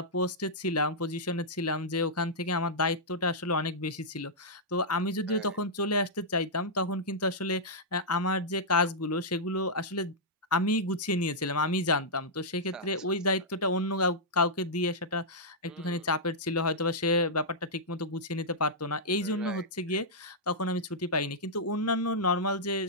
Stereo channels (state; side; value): normal; both; correlation -0.10